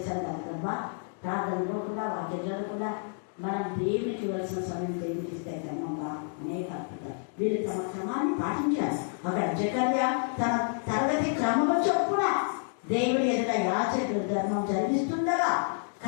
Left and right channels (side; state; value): right; silent; 58 dB below the other